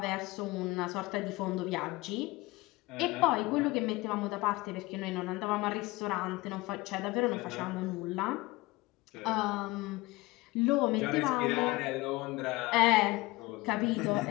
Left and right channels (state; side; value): quieter; right; 21.5 dB